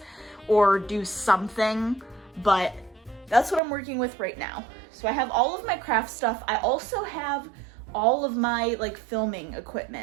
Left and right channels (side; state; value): left; drops out; at 3.6 s